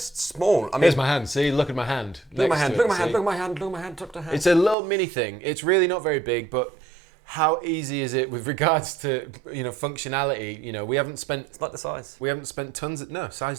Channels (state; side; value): drops out; left; at 4.8 s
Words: small. I mean, Here's my hand. See, look at my hand. Look at my hand. next Look to at my it, hand. see? Look at my hand. Look at my hand. Tuck the hand. It's a little mini thing. It's really not very big, but how easy is it with regards to functionality? We haven't spent. It's like the size. We haven't spent tons of. No,